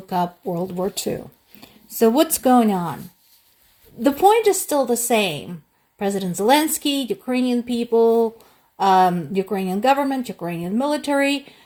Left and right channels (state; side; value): identical; both; correlation 1.00